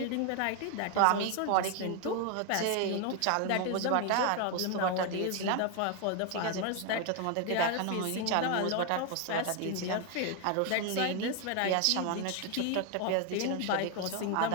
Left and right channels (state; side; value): different; both; correlation 0.01